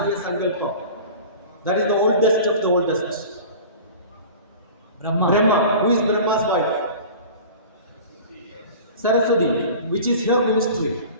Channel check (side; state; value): both; inverted; correlation -0.39